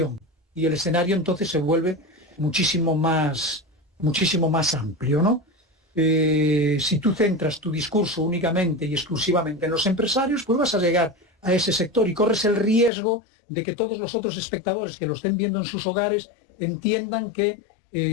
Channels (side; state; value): right; drops out; at 12.9 s